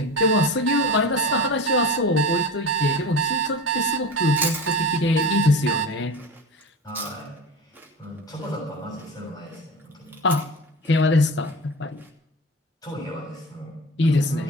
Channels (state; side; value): normal; both; correlation 0.30